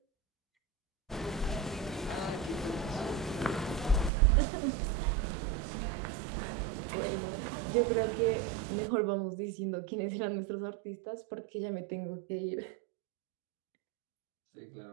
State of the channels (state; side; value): drops out; left; at 4.1 s